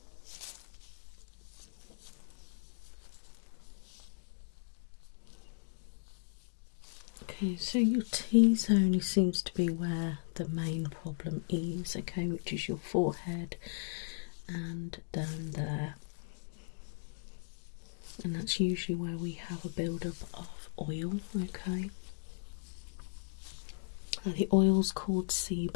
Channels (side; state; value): right; silent; digital silence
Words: Okay, so your T-zone only seems to be where the main problem is, okay, which is your forehead and down there. And that's usually where we have a build-up of oil, okay. The oil's called